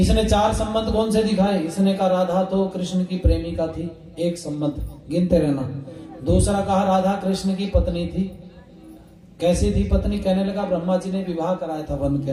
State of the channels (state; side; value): identical; both; correlation 1.00